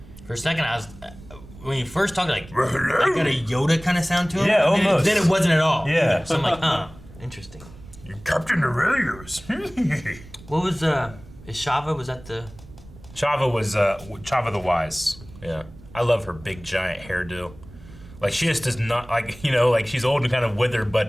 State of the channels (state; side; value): noise; right; rumble, 19 dB below the sound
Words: For a second, I was when you first talked, got a Yoda kind of sound to him. Yeah, almost. Then it wasn't at all. Yeah. So I'm like, interesting. You're Captain Aurelius. What was is Shava? Was that the? Chava was Chava the Wise. Yeah, I love her big giant hairdo. She just does not she's old and kind of withered,